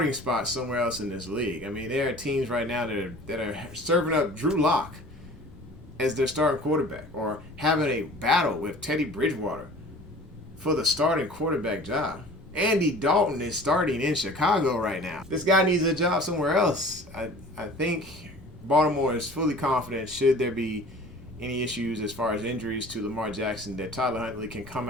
spot somewhere else in this league. I mean, there are teams right now that are serving up Drew Lock as their starting quarterback, or having a battle with Teddy Bridgewater for the starting quarterback job. Andy Dalton is starting in Chicago right now. This guy needs a job somewhere else. I think Baltimore is fully confident, should there be any issues as far as injuries to Lamar Jackson, that Tyler Huntley can come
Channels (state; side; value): normal; both; correlation 0.45